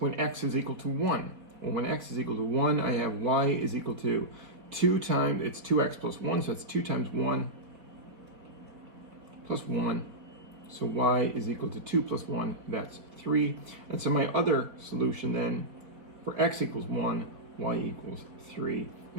when x is equal to 1. Well, when x is equal to 1, I have y is equal to 2 times, it's 2x plus 1, so that's 2 times 1 plus 1. So y is equal to 2 plus 1, that's 3. And so my other solution then, for x equals 1, y equals 3.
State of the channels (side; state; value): left; late; 4.6 ms